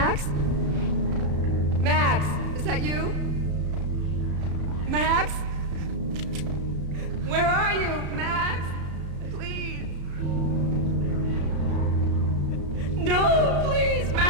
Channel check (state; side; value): late; left; 34 ms